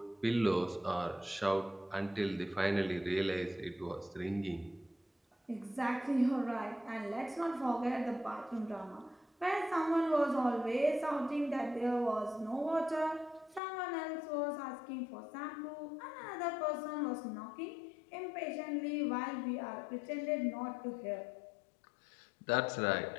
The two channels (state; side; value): drops out; right; at 13.6 s